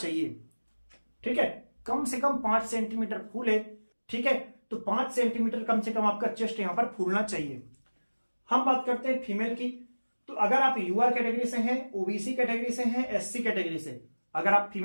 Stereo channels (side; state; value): both; inverted; correlation -1.00